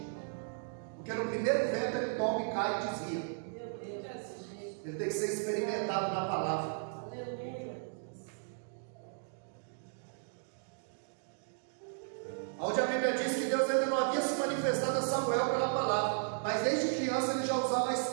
Porque no primeiro vento ele toma e cai e desvia. Meu Deus. Ele tem que ser experimentado na palavra. Aleluia. Onde a Bíblia diz que Deus ainda não havia se manifestado a Samuel pela palavra, mas desde criança ele já usava a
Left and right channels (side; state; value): left; silent; digital silence